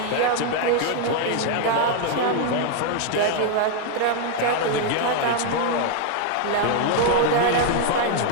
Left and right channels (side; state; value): both; different; correlation 0.00